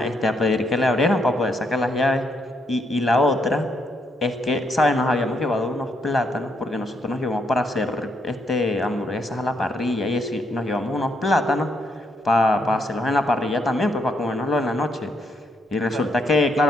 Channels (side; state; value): both; normal; correlation 0.76